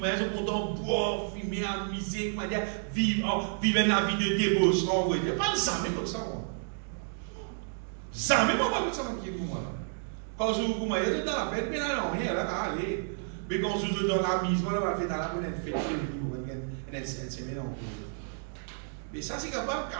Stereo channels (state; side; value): silent; left; digital silence